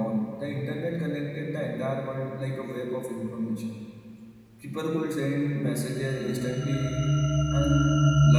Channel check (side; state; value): both; identical; correlation 1.00